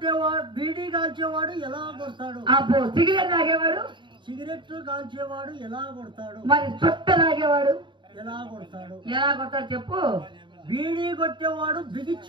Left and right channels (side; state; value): left; late; 0.23 ms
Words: బీడీ కాల్చేవాడు ఎలా కొడతాడు? అబ్బో, సిగరెట్ తాగేవాడు? సిగరెట్ కాల్చేవాడు ఎలా కొడతాడు? మరి చుట్ట తాగేవాడు ఎలా కొడతాడు? ఎలా కొడతాడు చెప్పు. బీడీ కొట్టేవాడు